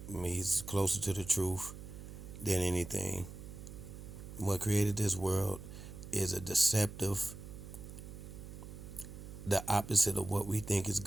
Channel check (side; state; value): right; noise; hum, 12 dB below the sound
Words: I mean, he's closer to the truth than anything. What created this world is a deceptive, the opposite of what we think is